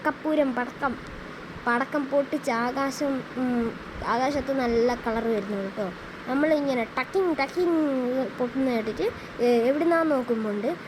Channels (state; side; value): identical; both; correlation 1.00